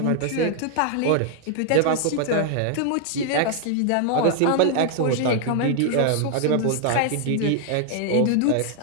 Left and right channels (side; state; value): both; different; correlation 0.00